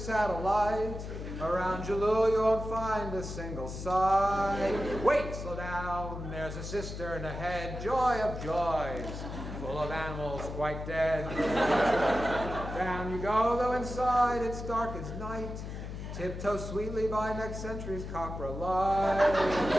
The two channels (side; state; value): left; noise; hum, 8 dB below the sound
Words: Around Jalul, you won't find a single site. Wait, slow down. There's a cistern ahead. Joy of joys. Full of animals quite dead. Down you go, though inside it's dark as night. Tiptoe sweetly by next century's copper light.